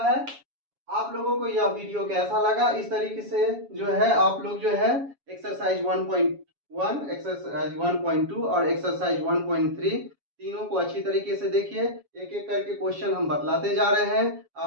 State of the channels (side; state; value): left; late; 7.2 ms